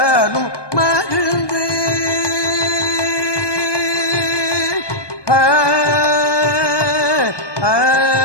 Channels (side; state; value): right; late; 1.2 ms